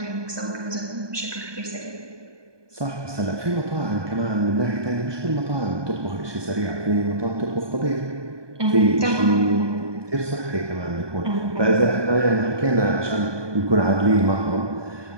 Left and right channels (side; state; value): left; late; 1.2 ms